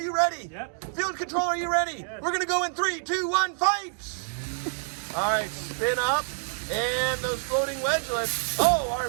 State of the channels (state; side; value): silent; left; digital silence